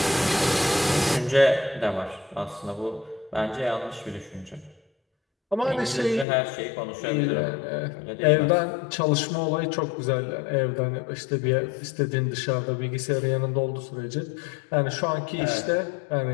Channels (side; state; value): right; drops out; at 6.2 s